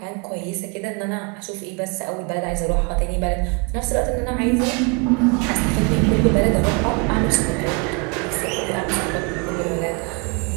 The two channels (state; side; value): quieter; left; 32.0 dB